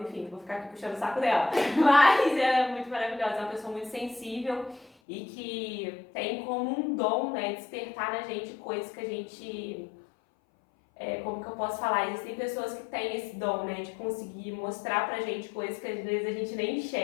enfim, vou ficar aqui puxando o saco dela, mas ela é muito maravilhosa, é uma pessoa muito sensível e que tem como um dom, né, despertar na gente coisas que a gente... como que eu posso falar? Existem pessoas que têm esse dom, né, de conseguir mostrar pra gente coisas que às vezes a gente nem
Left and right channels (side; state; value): right; drops out; at 4.9 s